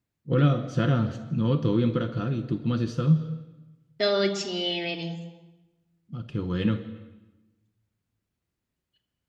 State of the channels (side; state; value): both; identical; correlation 1.00